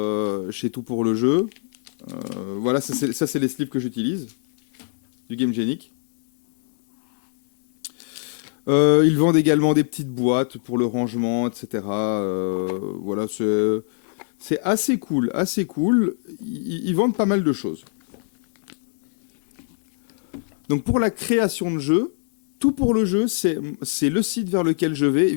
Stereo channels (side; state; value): right; silent; digital silence